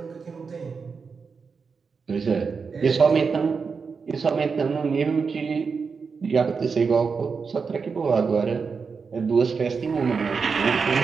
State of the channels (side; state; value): left; quieter; 5.3 dB